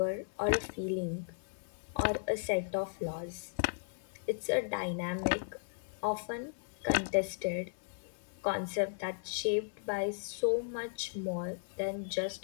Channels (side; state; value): right; silent; 54 dB below the other